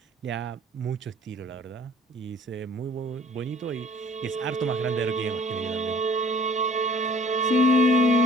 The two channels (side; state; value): both; normal; correlation 0.53